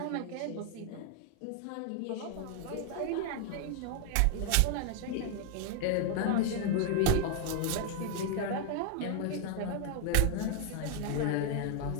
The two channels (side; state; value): both; different; correlation 0.00